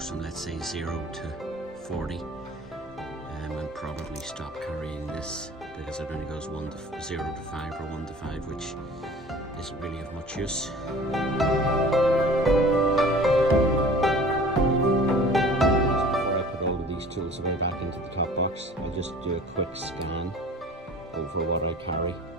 from, let's say, 0 to 40, and probably stop carrying this because it only goes 0 to 5 or 1 to 5, which isn't really of much use. Before I put all of these tools away back into the top box, I'll just do a quick scan over what I carry.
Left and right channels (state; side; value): normal; both; correlation 0.45